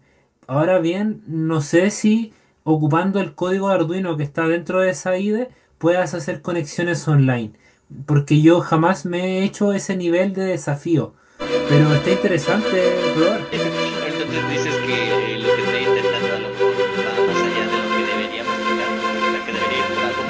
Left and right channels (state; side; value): identical; both; correlation 1.00